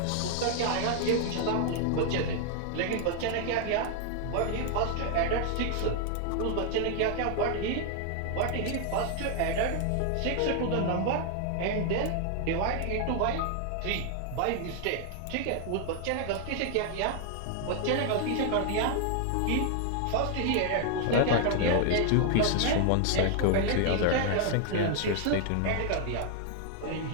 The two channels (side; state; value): both; different; correlation 0.00